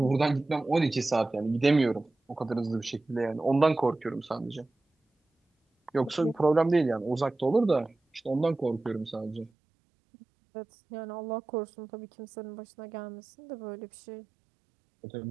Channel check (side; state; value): left; drops out; at 9.5 s